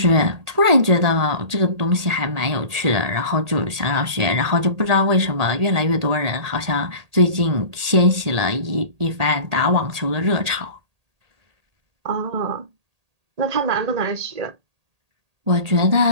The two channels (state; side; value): late; left; 1.8 ms